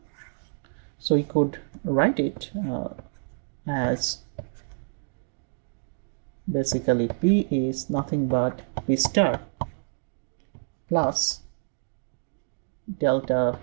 so we could write it as basically p is nothing but p star plus delta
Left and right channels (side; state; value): left; silent; digital silence